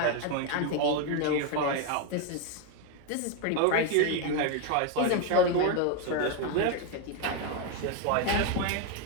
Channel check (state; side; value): different; both; correlation 0.01